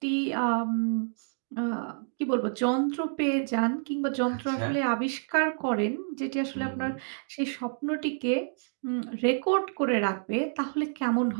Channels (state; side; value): silent; left; digital silence